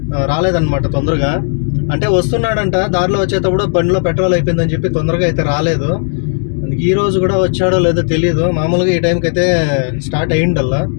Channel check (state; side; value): silent; right; 65 dB below the other